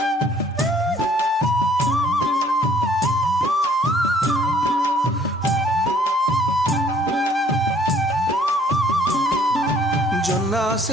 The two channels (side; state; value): both; normal; correlation 0.59